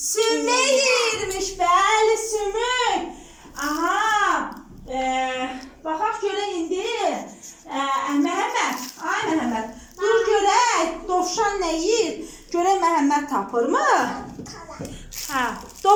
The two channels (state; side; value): identical; both; correlation 1.00